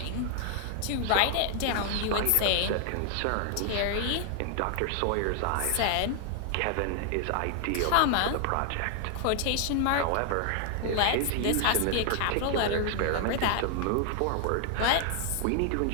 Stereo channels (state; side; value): different; both; correlation 0.00